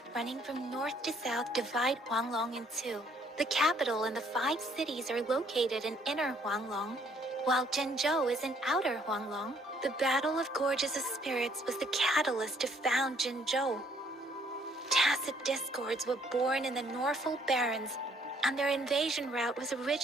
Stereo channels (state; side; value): normal; both; correlation 0.64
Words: running from north to south divide Huanglong in 2. The capital and the 5 cities are located in inner Huanglong, while Zhenzhou is in outer Huanglong. The Battle of Gorges of Spirits was the catalyst to found Zhenzhou. Tacit discords were born in the Norfolk Barrens, and their invasion route was